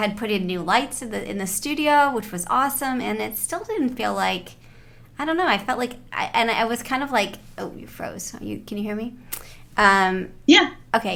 put in new lights in the studio, which was awesome, and it still didn't feel like, I don't know, I felt like, I was kind of like, oh, you froze. Can you hear me? Yeah.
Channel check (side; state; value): both; identical; correlation 1.00